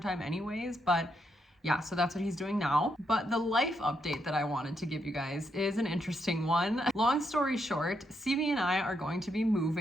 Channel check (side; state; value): both; normal; correlation 0.79